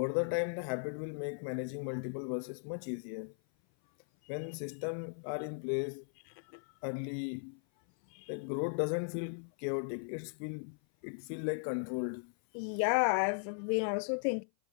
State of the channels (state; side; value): silent; right; 53 dB below the other